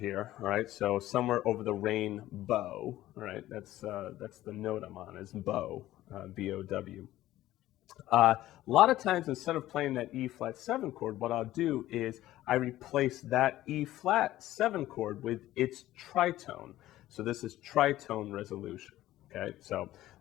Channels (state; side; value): quieter; right; 14.9 dB